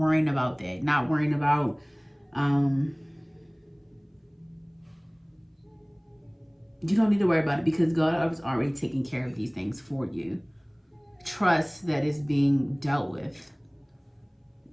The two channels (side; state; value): both; identical; correlation 1.00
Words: about that, not worrying about you don't need to worry about it, because God is already taking care of these things for you. Trust that it's being dealt with.